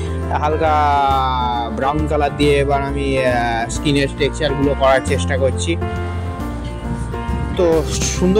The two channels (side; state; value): both; identical; correlation 1.00